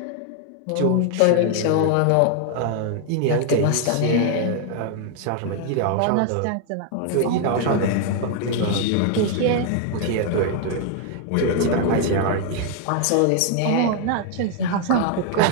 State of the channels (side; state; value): both; different; correlation 0.00